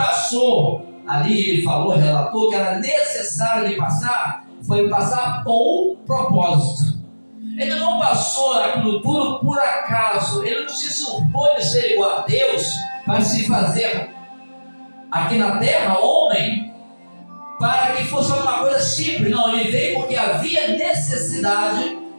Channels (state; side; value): inverted; both; correlation -1.00